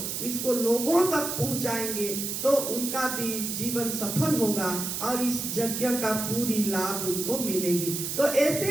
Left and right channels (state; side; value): noise; right; hiss, 3 dB below the sound